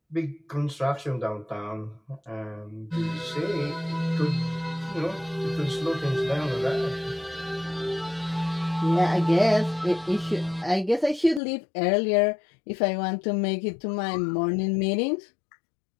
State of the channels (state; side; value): drops out; right; at 11.4 s